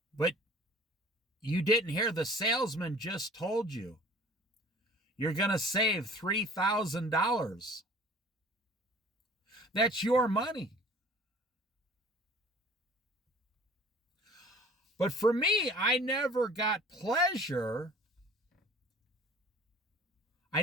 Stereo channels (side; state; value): both; normal; correlation 0.47